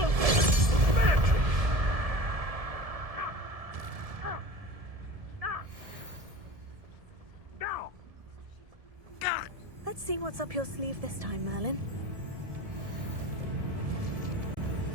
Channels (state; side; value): late; left; 1.7 ms